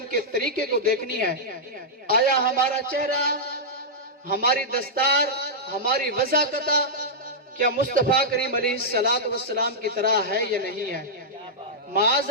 کے طریقے کو دیکھنی ہے. آیا ہمارا چہرہ، ہماری دستار، ہماری وضاحت کیا مصطفیٰ کریم علیہ السلام کی طرح ہے یا نہیں ہے؟ معاذ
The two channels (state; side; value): normal; both; correlation -0.10